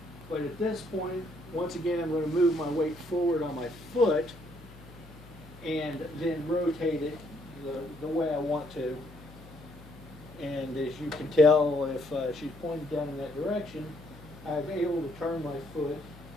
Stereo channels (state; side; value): noise; left; hum, 20 dB below the sound